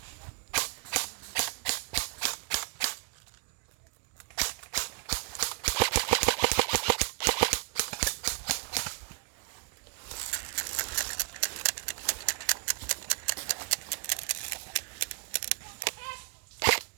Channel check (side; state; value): left; quieter; 36.4 dB